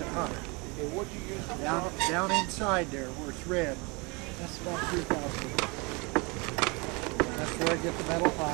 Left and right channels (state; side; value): quieter; left; 28.7 dB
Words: it hotter. Okay, what'd you use for Down inside there where it's red, that's about 2,000. That's where I get the metal